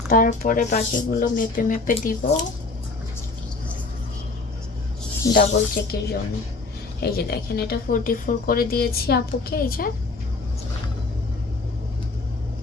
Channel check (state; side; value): quieter; right; 3.7 dB